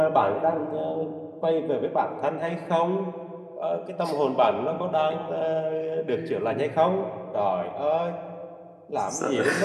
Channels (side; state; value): both; identical; correlation 1.00